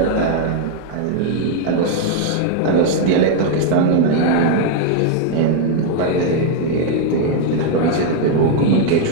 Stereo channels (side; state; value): both; different; correlation 0.00